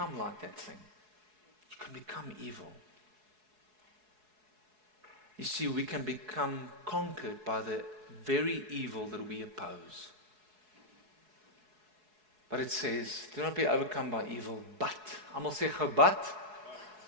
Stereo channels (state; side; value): late; left; 4.7 ms